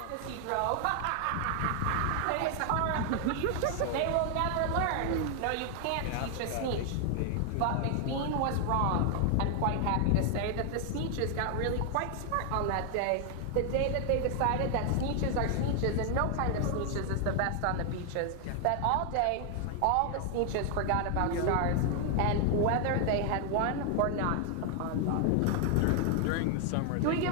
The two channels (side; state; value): both; different; correlation 0.00